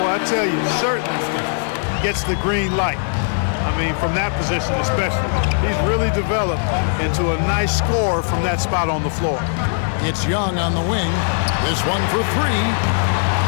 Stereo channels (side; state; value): right; silent; 66 dB below the other